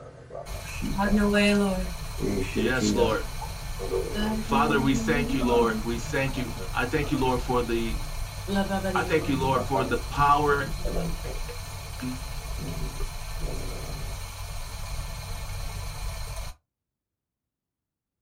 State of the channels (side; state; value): both; identical; correlation 1.00